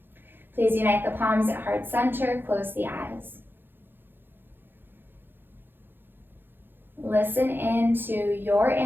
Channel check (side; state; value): left; late; 0.099 ms